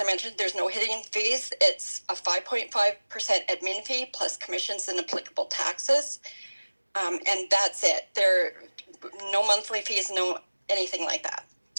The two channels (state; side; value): inverted; both; correlation -1.00